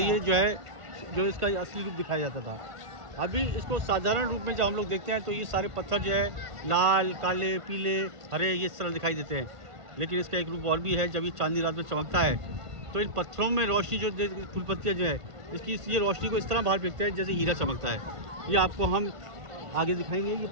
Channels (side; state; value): left; late; 1.5 ms